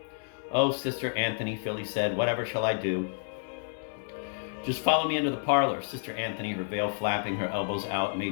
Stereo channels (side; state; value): right; silent; digital silence